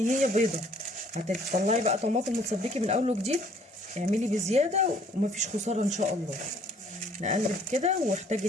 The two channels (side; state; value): both; normal; correlation 0.59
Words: بيضه، هتطلعي بقى طماطم وتصدقي من اول وجديد. اعملي بزياده ومفيش خساره ان شاء الله. نقلب كده،